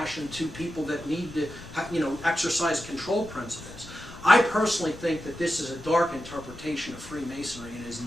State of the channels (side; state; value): left; noise; rumble, 18 dB below the sound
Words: to people that need to, exercise control principles. I personally think that this is a dark interpretation of Freemasonry and is